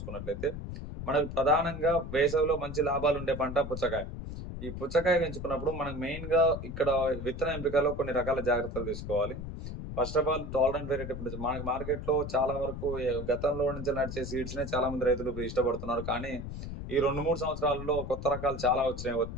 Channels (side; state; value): left; noise; rumble, 8 dB below the sound